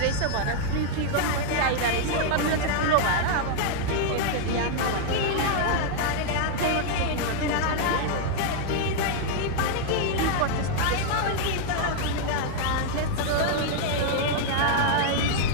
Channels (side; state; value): both; different; correlation -0.01